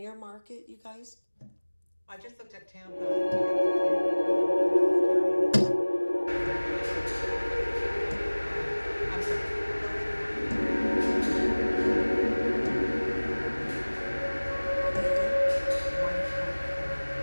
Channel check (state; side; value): inverted; both; correlation -1.00